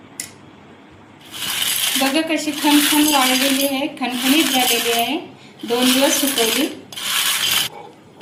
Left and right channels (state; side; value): identical; both; correlation 1.00